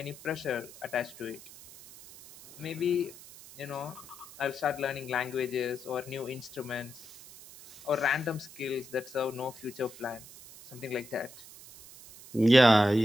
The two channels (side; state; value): right; noise; hiss, 18 dB below the sound